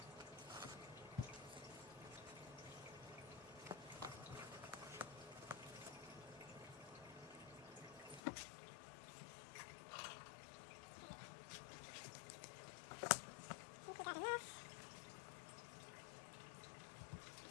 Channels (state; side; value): drops out; right; at 8.2 s